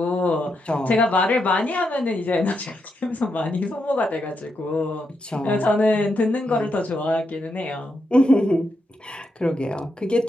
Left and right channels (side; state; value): both; normal; correlation 0.83